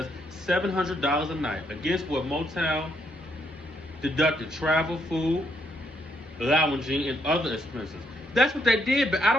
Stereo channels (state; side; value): normal; both; correlation 0.74